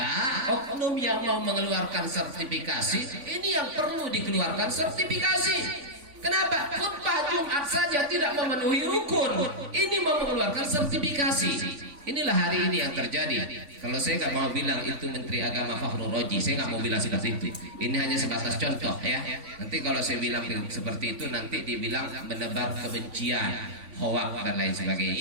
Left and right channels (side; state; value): left; late; 3.5 ms